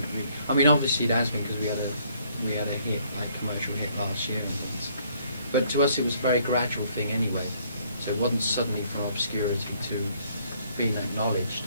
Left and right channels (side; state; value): both; inverted; correlation -0.65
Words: really, I mean, obviously it has been because we had a hit, like commercial hit last year and things. But to us it was a very gradual thing anyway. So it wasn't suddenly from obscurity to being acknowledged.